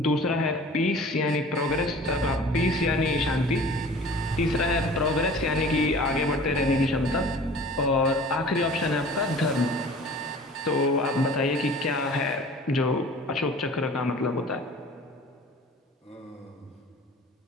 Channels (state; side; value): normal; both; correlation 0.44